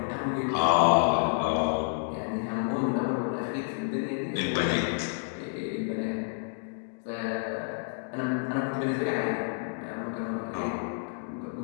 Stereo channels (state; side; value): silent; right; digital silence